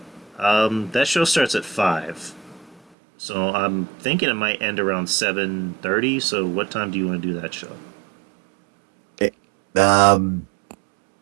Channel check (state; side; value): drops out; left; at 2.8 s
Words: That show starts at 5. So I'm thinking it might end around 7:30. So what time do you want to do that show?